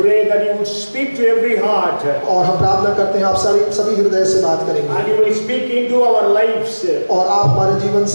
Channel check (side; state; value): both; inverted; correlation -1.00